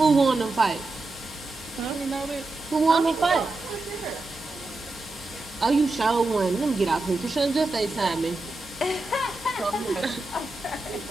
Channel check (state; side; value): quieter; left; 3.0 dB